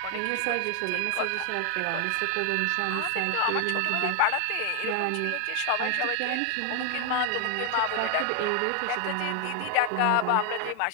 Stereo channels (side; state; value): both; different; correlation 0.00